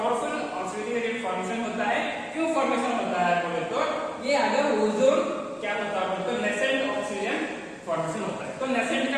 oxidising agent formation होता है। क्यों फॉर्मेशन होता है बोले तो ये अगर ओजोन क्या होता है बोले तो नेसेंट ऑक्सीजन फॉर्मेशन होता है। तो नेसेंट का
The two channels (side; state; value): both; identical; correlation 1.00